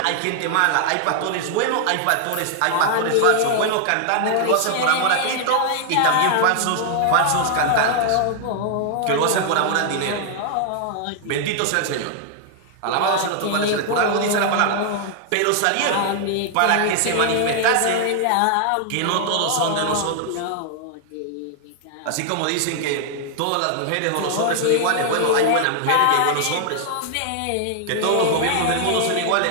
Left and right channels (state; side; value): different; both; correlation 0.00